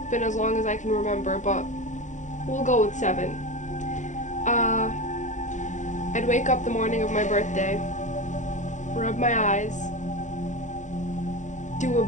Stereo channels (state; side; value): late; right; 0.35 ms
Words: been as long as I can remember, but we'll go with 7. I'd wake up the morning of my birthday, rub my eyes, do